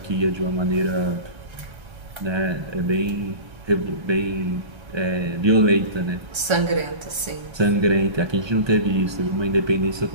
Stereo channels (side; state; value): left; late; 1.3 ms